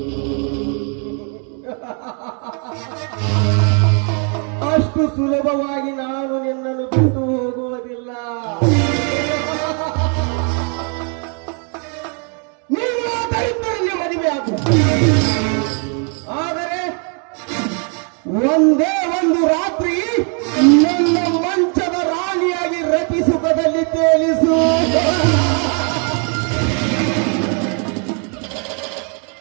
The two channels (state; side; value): quieter; left; 39.4 dB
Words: ಅಷ್ಟು ಸುಲಭವಾಗಿ ನಾನು ನಿನ್ನನ್ನು ಬಿಟ್ಟು ಹೋಗುವುದಿಲ್ಲ. ನೀನು ದರಿದ್ರರಿಗೆ ಮದುವೆ ಆಗು. ಆದರೆ ಒಂದೇ ಒಂದು ರಾತ್ರಿ ನನ್ನ ಮಂಚದ ರಾಣಿಯಾಗಿ ರತಿ ಸುಖದಲ್ಲಿ ತೇಲಿಸು.